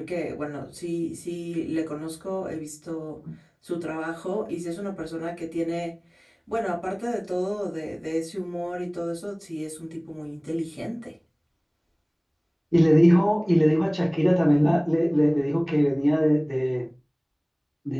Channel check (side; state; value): both; identical; correlation 1.00